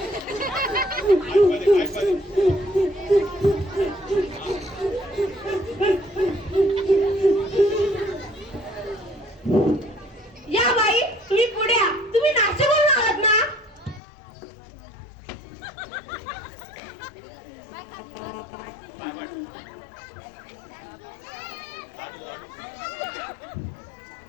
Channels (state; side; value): drops out; right; at 14.0 s